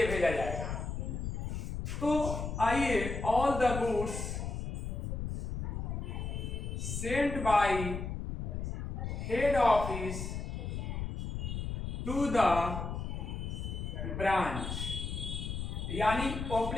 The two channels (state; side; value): noise; left; rumble, 4 dB below the sound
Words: भेजा जाएगा। तो आइए, all the goods sent by head office to the branch, यानी